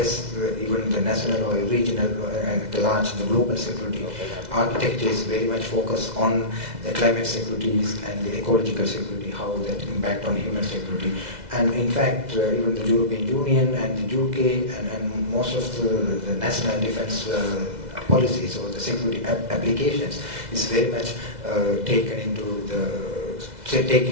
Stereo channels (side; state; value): left; late; 2.0 ms